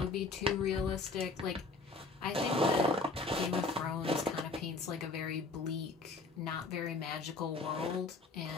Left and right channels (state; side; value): quieter; right; 3.6 dB